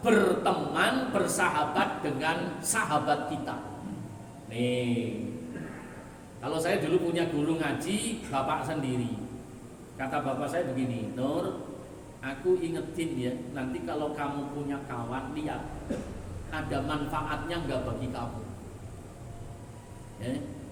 berteman, bersahabat dengan sahabat kita. Nih, kalau saya dulu punya guru ngaji, bapak sendiri. Kata bapak saya begini, Nur, aku ingetin ya, nanti kalau kamu punya kawan, lihat ada manfaatnya nggak bagi kamu. Ya.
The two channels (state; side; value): identical; both; correlation 1.00